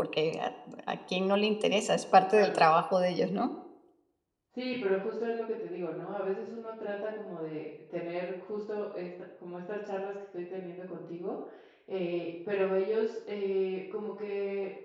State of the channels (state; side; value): identical; both; correlation 1.00